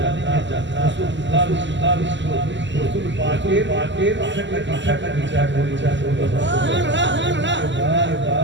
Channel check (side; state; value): left; late; 0.53 ms